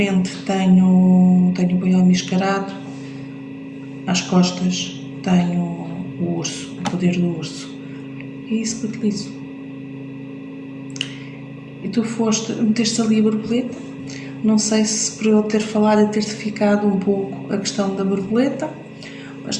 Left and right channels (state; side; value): identical; both; correlation 1.00